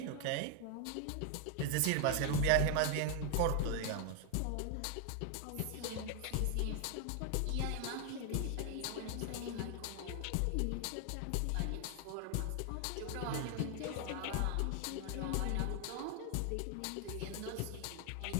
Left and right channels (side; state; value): both; different; correlation 0.00